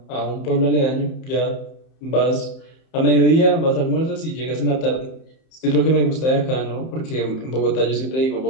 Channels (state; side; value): late; right; 31 ms